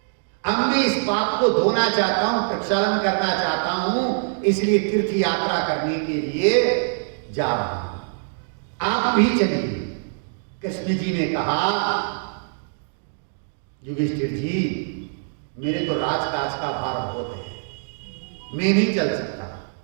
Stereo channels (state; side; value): silent; left; digital silence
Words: अब मैं इस पाप को धोना चाहता हूं, प्रक्षालन करना चाहता हूं, इसलिए तीर्थ यात्रा करने के लिए जा रहा हूं, आप भी चलिए। कृष्ण जी ने कहा, युधिष्ठिर जी मेरे तो राजकाज का भार बहुत है, मैं नहीं चल सकता,